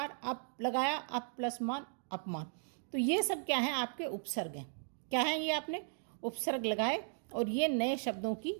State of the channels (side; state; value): left; silent; digital silence